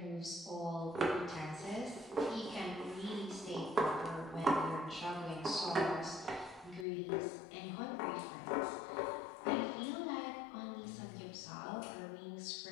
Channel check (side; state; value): right; drops out; at 6.9 s